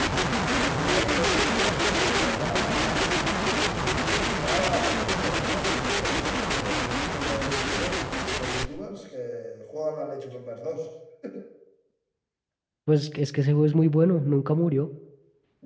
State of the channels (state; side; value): identical; both; correlation 1.00